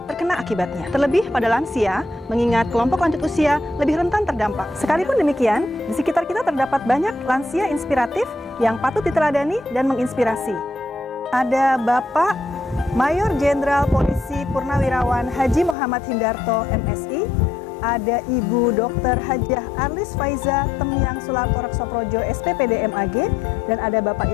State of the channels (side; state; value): right; drops out; at 15.8 s